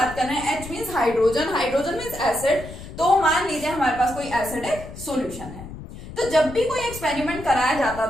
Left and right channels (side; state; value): left; noise; rumble, 13 dB below the sound